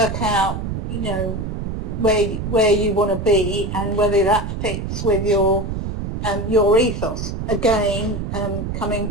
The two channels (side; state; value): right; noise; rumble, 4 dB below the sound